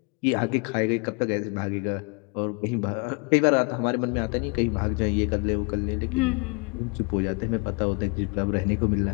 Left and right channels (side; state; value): right; quieter; 31.2 dB